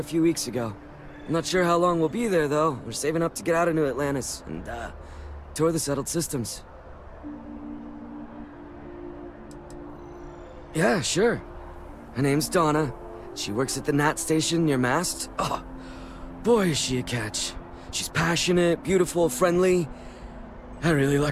few weeks ago. I'm not sure how long we'll be there, though. We're saving up to get out of New Atlantis and, tour the settled systems. Yeah, sure. Her name's Donna. She works at the Nat station near Mast. Oh, boy, is she a catch. She's passionate, beautiful, friendly. I really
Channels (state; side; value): identical; both; correlation 1.00